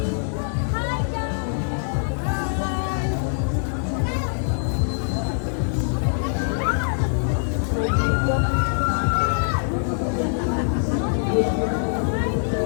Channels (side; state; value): right; silent; 63 dB below the other